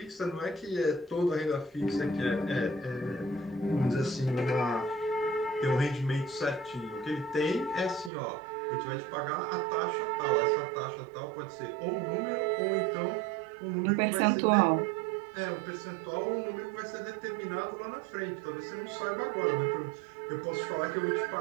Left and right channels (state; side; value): drops out; left; at 8.1 s